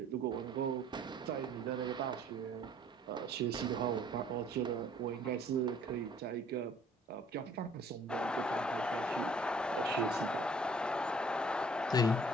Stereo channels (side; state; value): both; normal; correlation 0.56